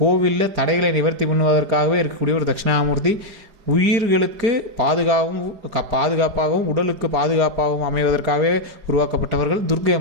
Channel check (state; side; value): late; left; 4.8 ms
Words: கோவிலில் தடைகளை நிவர்த்தி பண்ணுவதற்காகவே இருக்கக்கூடிய ஒரு தட்சிணாமூர்த்தி. உயிர்களுக்கு பாதுகாப்பாகவும் உடலுக்கு பாதுகாப்பாகவும் அமைவதற்காகவே உருவாக்கப்பட்டவர்கள் துர்க்கை